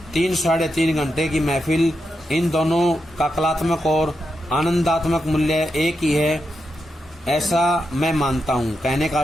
3-3.5 घंटे की महफिल, इन दोनों का कलात्मक और आनंदात्मक मूल्य एक ही है, ऐसा मैं मानता हूँ। कहने का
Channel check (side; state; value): both; normal; correlation 0.86